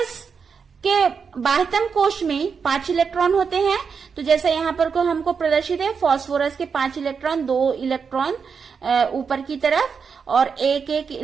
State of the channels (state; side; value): quieter; left; 5.9 dB